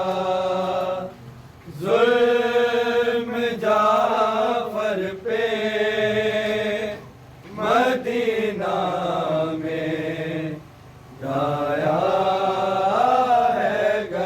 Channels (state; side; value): identical; both; correlation 1.00